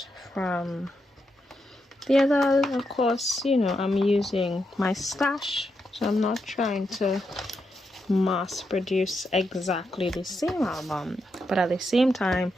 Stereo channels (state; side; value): normal; both; correlation 0.83